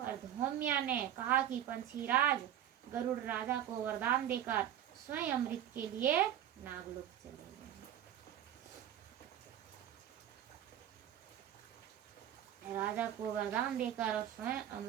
धौम्या ने कहा कि पंछीराज गरुड़ राजा को वरदान देकर स्वयं अमृत के लिए नागलोक चले गए। राजा को वरदान देकर और स्वयं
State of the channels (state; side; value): quieter; left; 10.9 dB